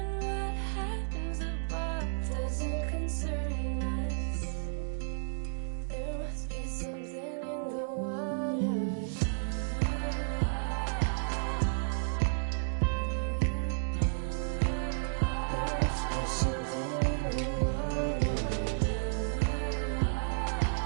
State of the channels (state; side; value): silent; left; 56 dB below the other